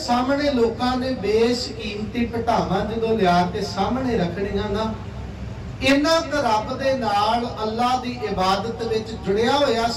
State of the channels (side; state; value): both; identical; correlation 1.00